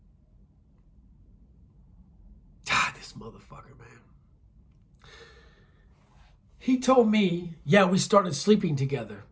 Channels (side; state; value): both; identical; correlation 1.00